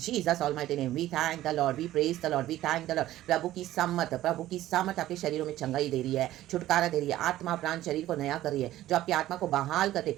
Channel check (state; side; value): quieter; left; 14.4 dB